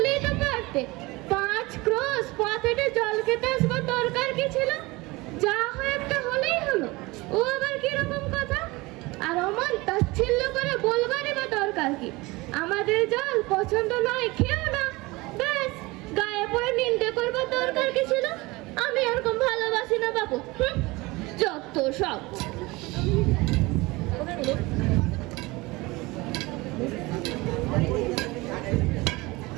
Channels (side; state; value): left; quieter; 22.5 dB